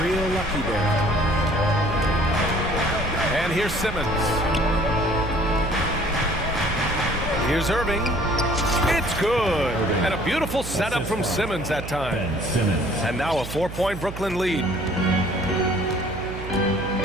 real lucky there. And here's Simmons. Here's Irving. It's good. And a beautiful setup from Simmons that time. And now a 4-point Brooklyn lead.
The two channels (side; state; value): right; noise; hum, 10 dB below the sound